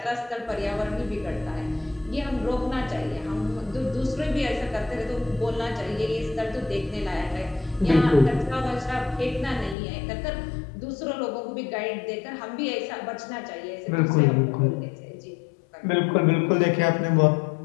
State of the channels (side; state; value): right; drops out; at 9.8 s